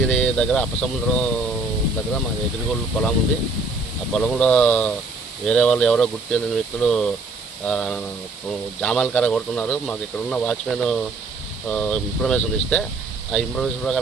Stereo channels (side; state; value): left; quieter; 3.5 dB